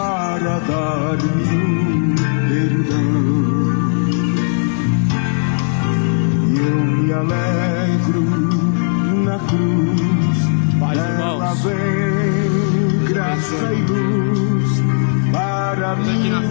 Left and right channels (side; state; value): right; silent; digital silence